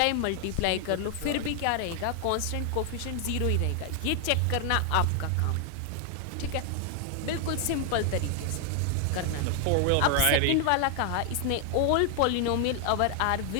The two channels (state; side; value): different; both; correlation 0.00